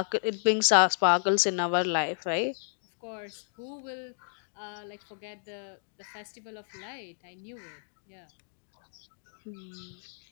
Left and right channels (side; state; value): right; silent; digital silence